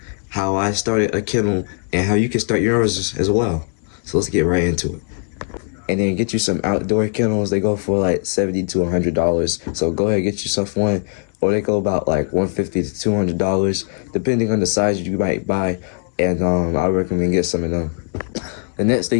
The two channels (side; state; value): right; quieter; 39.6 dB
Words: how I started a kennel and how you can start yours as well. So let's get right into it. And then get you some outdoor kennels. They go for like $70 to $100. So go ahead and get yourself one, or they go about like $150 to $200 depending on the size you might buy. And I would recommend get some of them. The next